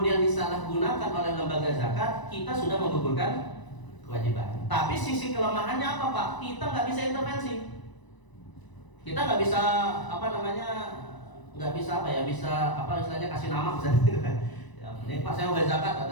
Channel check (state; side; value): late; right; 1.0 ms